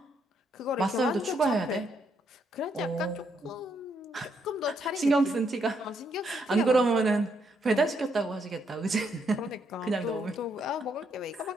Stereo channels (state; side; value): normal; both; correlation 0.75